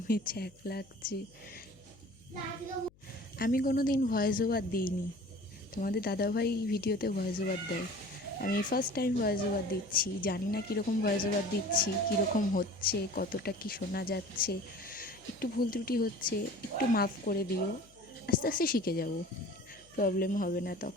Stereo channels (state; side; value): noise; left; hum, 29 dB below the sound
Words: ছ্যাঁক লাগছে। আমি কোনো দিন ভয়েস ওভার দিইনি, তোমাদের দাদাভাই ভিডিওতে ভয়েস ওভার দেয়। আমি ফার্স্ট টাইম ভয়েস ওভার দিচ্ছি, জানি না কীরকম ভয়েস ওভার দিচ্ছি, কীরকম হচ্ছে, কতটা কি শোনা যাচ্ছে। একটু ভুল ত্রুটি হচ্ছে, একটু মাফ করে দিও। আস্তে আস্তে শিখে যাব, প্রবলেম হবে না।